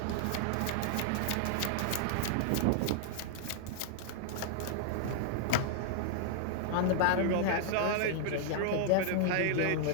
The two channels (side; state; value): both; different; correlation -0.01